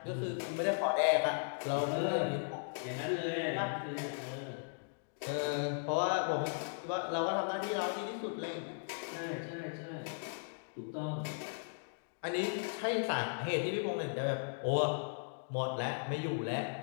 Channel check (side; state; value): right; silent; digital silence